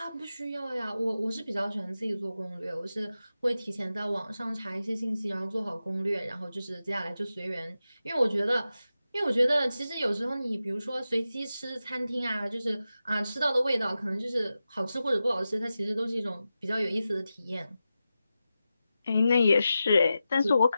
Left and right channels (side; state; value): both; inverted; correlation -0.92